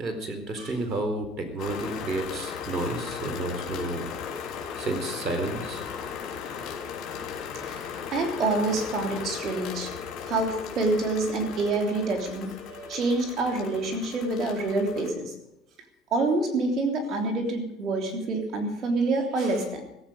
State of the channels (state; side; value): normal; both; correlation 0.49